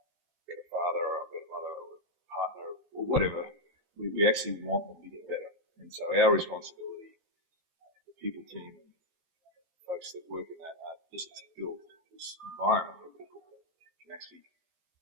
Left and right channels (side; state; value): left; late; 13 ms